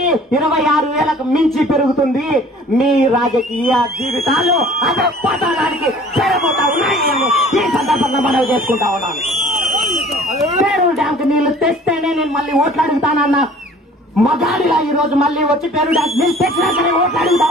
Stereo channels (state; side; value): normal; both; correlation 0.50